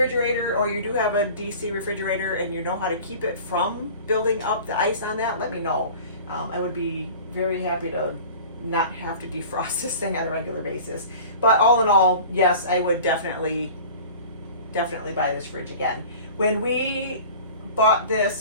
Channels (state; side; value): inverted; both; correlation -0.41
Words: or you do have a DC refrigerator and you know how to keep it from building up the ice on that, let me know. I would be very happy to not have to defrost this thing on a regular basis. But all in all, yes, I would definitely buy this fridge again. When we bought